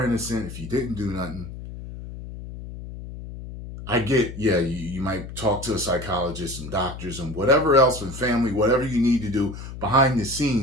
innocent, if you didn't do nothing, I get, yeah, you might talk to a psychologist and doctors and whatever else and family, whatever you need to do behind the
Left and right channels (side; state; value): left; noise; hum, 11 dB below the sound